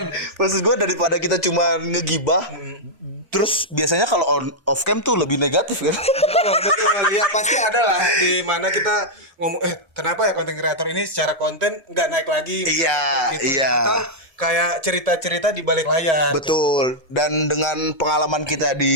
maksud gue daripada kita cuma ngegibah, terus biasanya kalau off cam tuh lebih negatif kan? Betul. Ya pasti ada lah di mana kita ngomong kenapa ya konten kreator ini secara konten nggak naik lagi? Iya, iya. Itu kayak cerita-cerita di balik layar. Betul. Dan dengan pengalaman kita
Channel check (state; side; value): normal; both; correlation -0.06